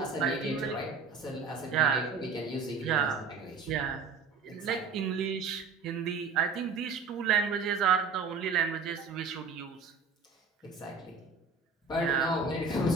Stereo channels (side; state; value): left; quieter; 4.7 dB